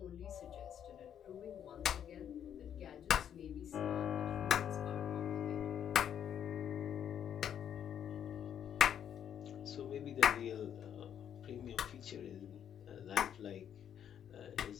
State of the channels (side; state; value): right; quieter; 9.2 dB